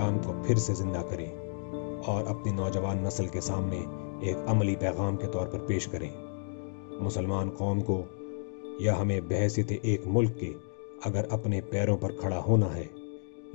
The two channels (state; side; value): silent; right; digital silence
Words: کو پھر سے زندہ کریں اور اپنی نوجوان نسل کے سامنے ایک عملی پیغام کے طور پر پیش کریں۔ مسلمان قوم کو یا ہمیں بحیثیت ایک ملک کے اگر اپنے پیروں پر کھڑا ہونا ہے،